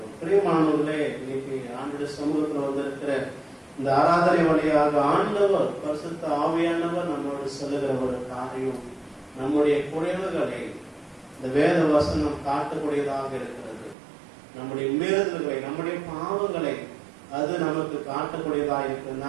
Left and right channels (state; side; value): drops out; left; at 14.0 s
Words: பிரியமானவர்களே, இன்னைக்கு ஆண்டுடைய சமூகத்தில் வந்திருக்கிற இந்த ஆராதனை வழியாக ஆண்டவர் பரிசுத்த ஆவியானவர் நம்மோடு சொல்லுகிற ஒரு காரியம், நம்முடைய குறைவுகளை இந்த வேத வசனம் காட்டக்கூடியதாக இருக்கிறது. நம்முடைய மீறுதல்களை, நம்முடைய பாவங்களை அது நமக்கு காட்டக்கூடியதாக இருக்கிறது.